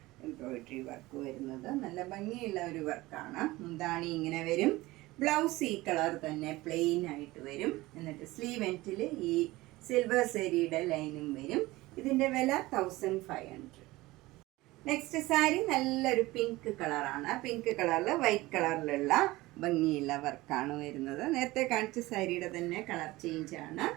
എംബ്രോയിഡറി വർക്ക് വരുന്നത് നല്ല ഭംഗിയുള്ള ഒരു വർക്കാണ്. മുന്താണി ഇങ്ങനെ വരും. ബ്ലൗസ് ഈ കളർ തന്നെ പ്ലെയിൻ ആയിട്ട് വരും. എന്നിട്ട് സ്ലീവ് എൻഡിൽ ഈ സിൽവർ സെരിയുടെ ലൈനും വരും. ഇതിൻ്റെ വില 1500. നെക്സ്റ്റ് സാരി നല്ലൊരു പിങ്ക് കളറാണ്. പിങ്ക് കളറിൽ വൈറ്റ് കളറിലുള്ള ഭംഗിയുള്ള വർക്കാണ് വരുന്നത്. നേരത്തെ കാണിച്ച സാരിയുടെ തന്നെ കളർ ചേഞ്ച് ആണ്.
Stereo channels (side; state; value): left; quieter; 19.5 dB